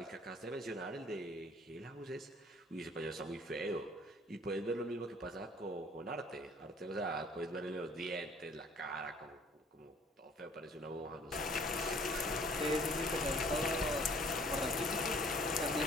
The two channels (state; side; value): normal; both; correlation 0.56